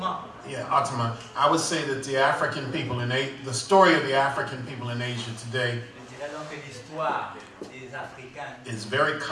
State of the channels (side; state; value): both; identical; correlation 1.00